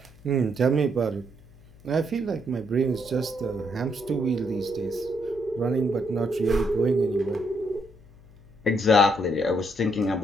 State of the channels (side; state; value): left; noise; hum, 24 dB below the sound